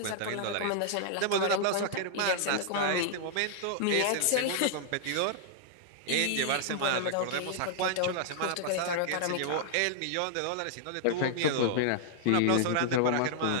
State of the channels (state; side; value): different; both; correlation -0.01